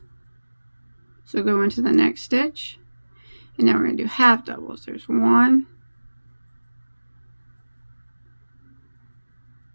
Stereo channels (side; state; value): both; inverted; correlation -1.00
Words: So go into the next stitch, and now we're gonna do half doubles. There's 1,